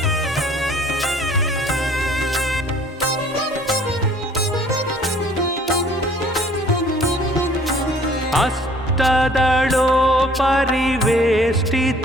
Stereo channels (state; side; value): normal; both; correlation 0.55